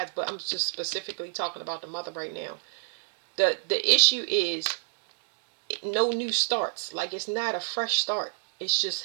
But I'm just specifically talking about the mother right now. The issue is no new starts. Like, it's not a fresh start. It's just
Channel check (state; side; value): silent; left; digital silence